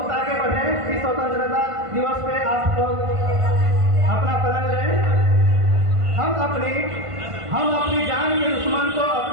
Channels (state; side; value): late; left; 1.5 ms